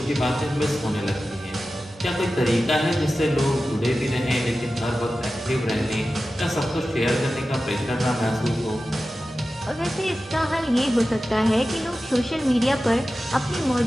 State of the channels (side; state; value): both; normal; correlation 0.94